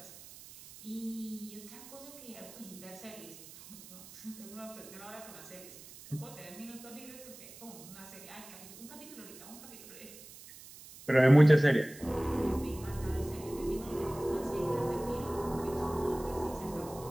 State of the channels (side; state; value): right; noise; hiss, 17 dB below the sound